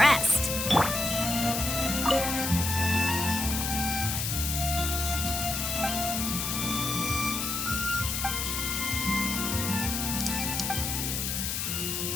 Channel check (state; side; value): noise; left; hiss, 1 dB below the sound